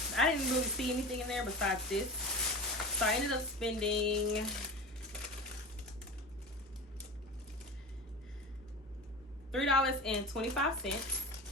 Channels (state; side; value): normal; both; correlation 0.31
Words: really see anything in there besides this. So I ended up spending